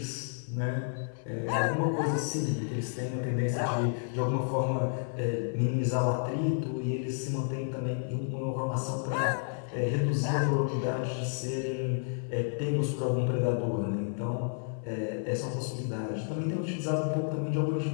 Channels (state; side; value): silent; right; 57 dB below the other